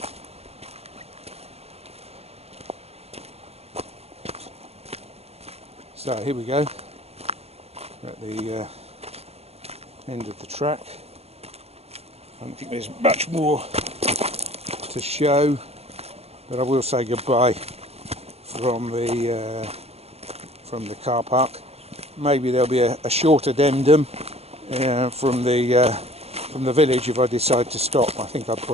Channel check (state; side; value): late; left; 0.30 ms